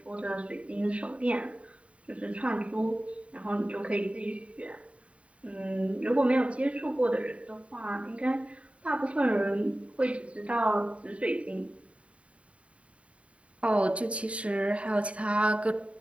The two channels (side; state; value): left; late; 0.064 ms